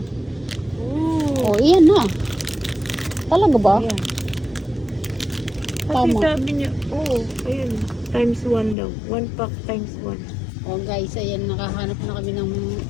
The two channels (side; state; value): right; drops out; at 8.8 s